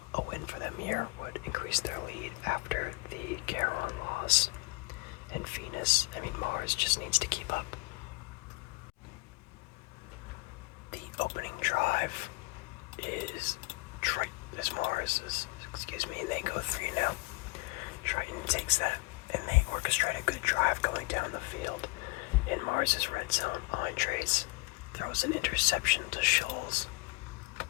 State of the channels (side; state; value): right; quieter; 26.4 dB